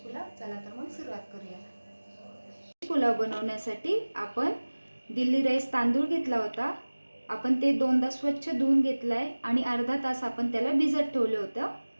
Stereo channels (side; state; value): both; inverted; correlation -1.00